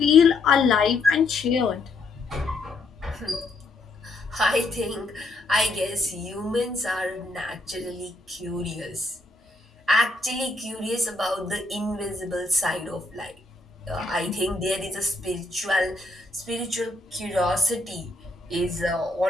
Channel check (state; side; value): quieter; right; 3.0 dB